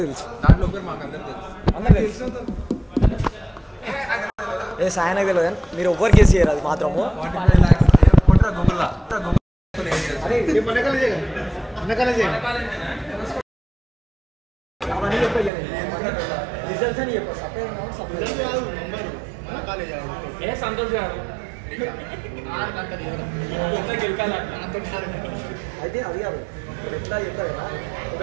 తెలుసు ఏ సాయనకు తెలియదు కానీ మీరు ఎవ్వరు కేసు చేయరు అది మాత్రము రిజల్ట్స్ అని చెప్పు సంతోష్ గారు అయితే అది కాదు ఎట్లా చెప్తారు కదా ఒక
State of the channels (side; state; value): left; drops out; at 15.5 s